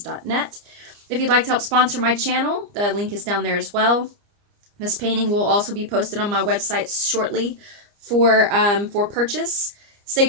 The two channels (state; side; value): late; left; 29 ms